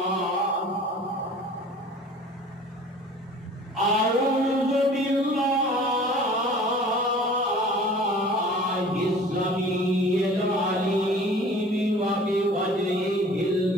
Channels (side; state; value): both; normal; correlation 0.46